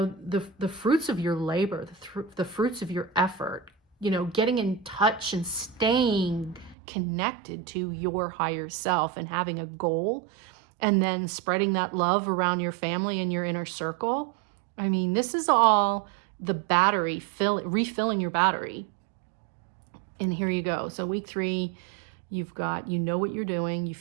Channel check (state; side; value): drops out; left; at 6.8 s